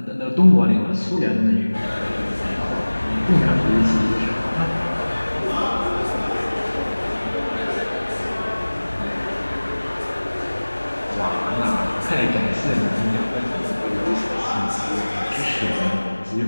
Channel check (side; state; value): both; inverted; correlation -1.00